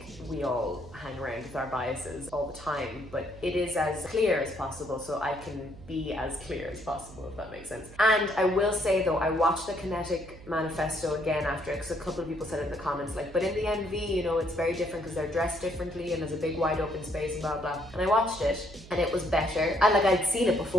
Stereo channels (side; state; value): right; noise; hum, 18 dB below the sound